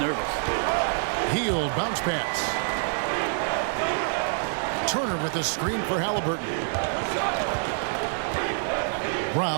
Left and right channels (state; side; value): silent; left; 61 dB below the other